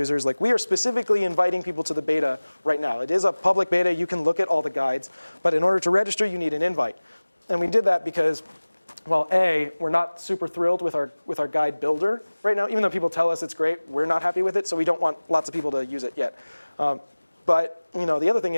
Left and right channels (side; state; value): both; inverted; correlation -1.00